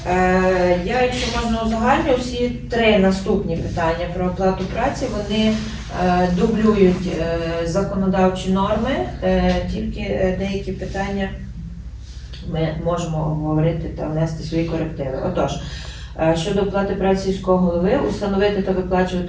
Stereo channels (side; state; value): both; identical; correlation 1.00